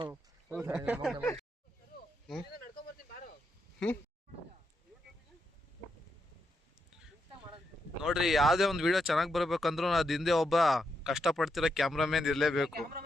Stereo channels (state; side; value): normal; both; correlation 0.82